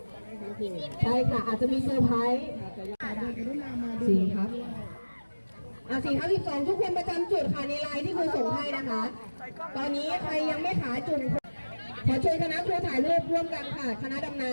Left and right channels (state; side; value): inverted; both; correlation -1.00